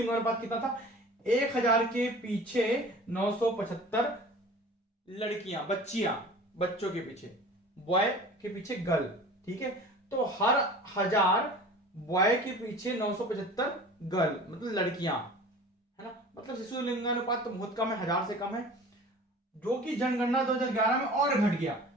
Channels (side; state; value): both; normal; correlation 0.42